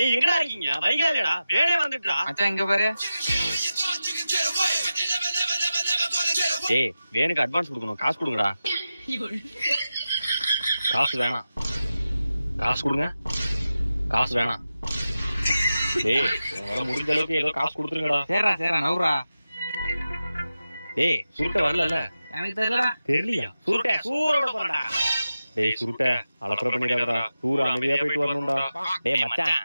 எங்கடா இருக்கீங்க? வைகா இல்லடா, வேணே வந்துட்டா. மச்சான் இங்க பாரு. டேய் வேணுக்கு அட்வான்ஸ் கொடுக்கணும், காசு கொடுங்கடா. காசு வேணாம், காசு கொடுங்க. காசு வேணாம். டேய் உங்களால முடிஞ்ச அளவுக்கு ஏதோ காசு கொடுத்துருங்கடா. சரிடா சரிடா நவுறா. டேய் சுருட்ட வரல. எனக்கு தெரியலடா. தெரியலையா? சுருட்ட சூரோட போறடா. டேய் சுருட்ட அலப்பற பண்ணிடாதடா. டூர் அமைதியா போயிட்டு வரணும்டா. டேய் மச்சான்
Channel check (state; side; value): inverted; both; correlation -0.92